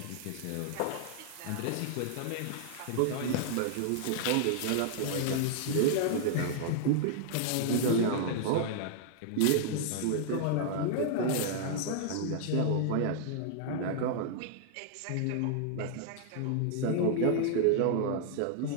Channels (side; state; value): both; different; correlation -0.01